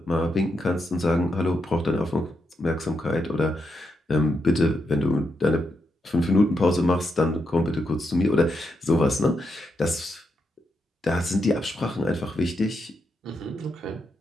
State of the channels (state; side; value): normal; both; correlation 0.82